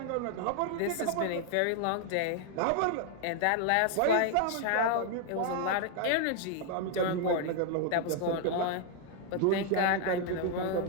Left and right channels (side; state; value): both; different; correlation 0.00